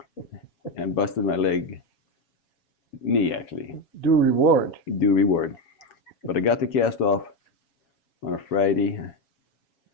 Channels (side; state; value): right; late; 7.2 ms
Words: and busted my knee actually. Due reward. Due reward. But I got the cast off on a Friday.